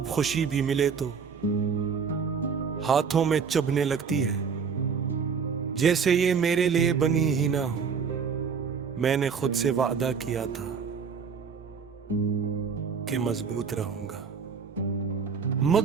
खुशी भी मिले तो हाथों में चुभने लगती है, जैसे ये मेरे लिए बनी ही ना हो। मैंने खुद से वादा किया था कि मजबूत रहूंगा,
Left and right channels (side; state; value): left; quieter; 6.1 dB